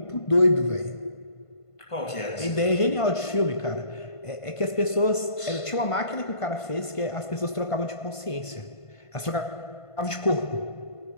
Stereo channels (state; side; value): late; right; 1.5 ms